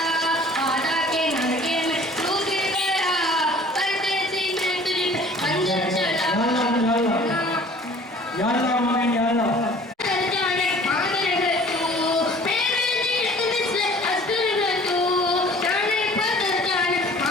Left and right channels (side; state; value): both; normal; correlation 0.50